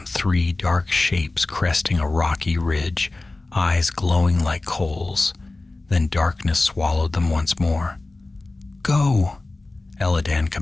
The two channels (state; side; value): quieter; right; 3.1 dB